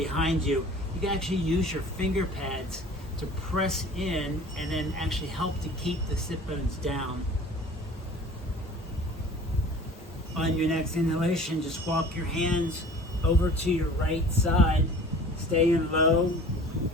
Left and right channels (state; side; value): normal; both; correlation 0.45